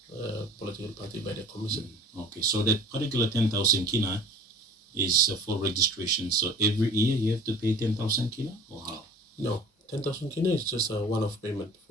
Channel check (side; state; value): both; normal; correlation 0.44